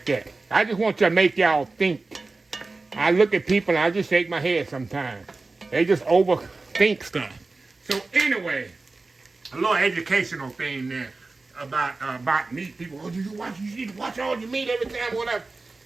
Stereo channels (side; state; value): left; quieter; 3.6 dB